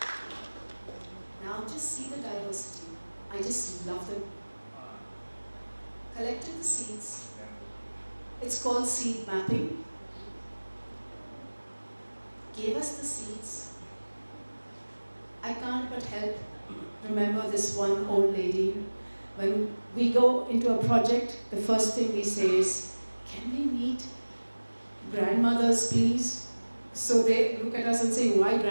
Now just see the diversity. I just love them. Collected the seeds. It's called seed mapping. Gave us the seeds. I can't but help remember this one old lady. When we go into a project, the first thing we say is, can we meet grandmothers, please? So they look at us and say, why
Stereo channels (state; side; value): inverted; both; correlation -1.00